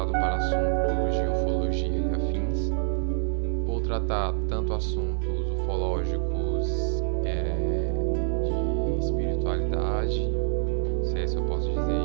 para assuntos de ufologia e afins. Vou tratar tanto assuntos ufológicos de espiritualidade, se é isso eu posso dizer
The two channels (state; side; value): silent; left; digital silence